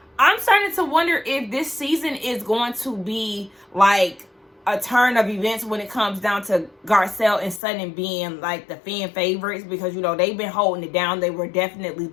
I'm starting to wonder if this season is going to be like a turn of events when it comes down to Garcelle and Sutton being like the fan favorites, because, you know, they've been holding it down. They were definitely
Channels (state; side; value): drops out; right; at 7.6 s